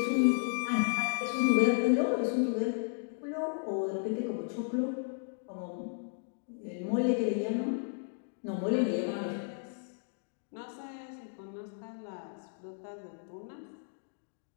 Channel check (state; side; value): silent; right; digital silence